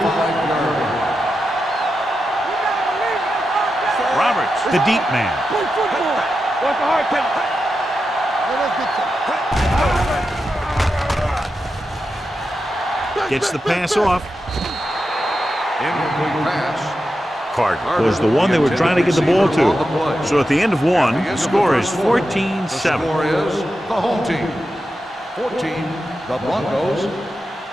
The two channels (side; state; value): both; normal; correlation 0.89